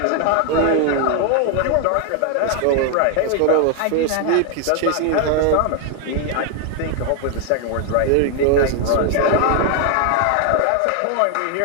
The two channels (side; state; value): both; different; correlation 0.00